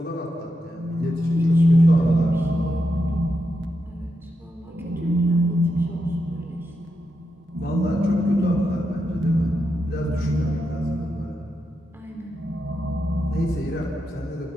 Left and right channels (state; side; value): normal; both; correlation 0.85